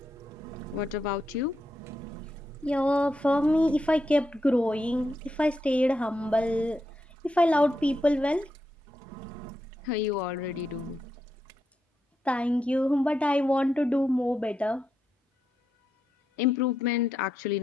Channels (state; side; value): normal; both; correlation 0.84